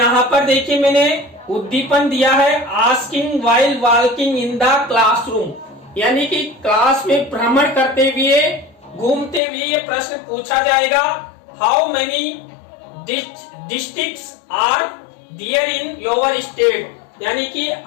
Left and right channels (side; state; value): right; drops out; at 9.4 s